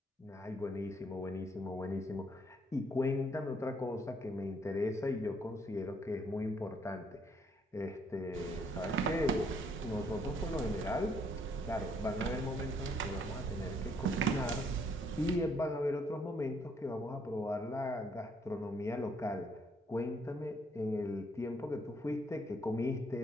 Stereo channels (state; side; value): normal; both; correlation 0.68